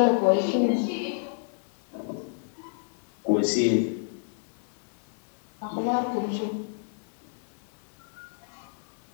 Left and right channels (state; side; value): silent; right; digital silence